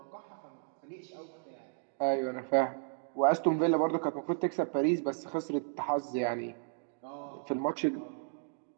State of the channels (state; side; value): silent; left; digital silence